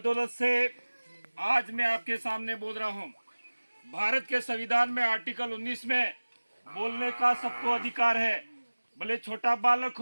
से आज मैं आपके सामने बोल रहा हूँ। भारत के संविधान में आर्टिकल 19 में बोलने का सबको अधिकार है, भले छोटा बालक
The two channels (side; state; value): both; inverted; correlation -1.00